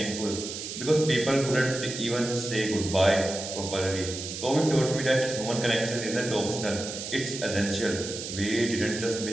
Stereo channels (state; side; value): noise; right; hiss, 7 dB below the sound